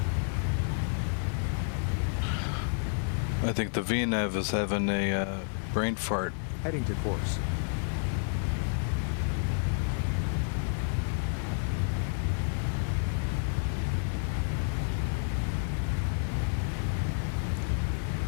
I think the VNAV is having a brain fart. Heading to course.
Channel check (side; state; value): right; silent; 58 dB below the other